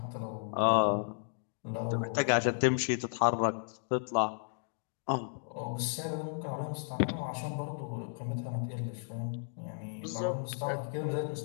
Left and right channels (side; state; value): right; silent; digital silence